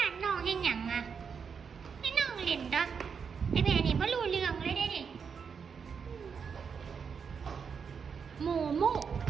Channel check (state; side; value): quieter; left; 6.3 dB